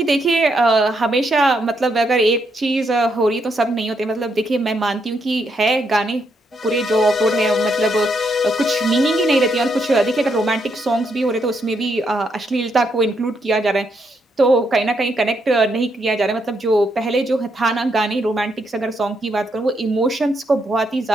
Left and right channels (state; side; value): normal; both; correlation 0.77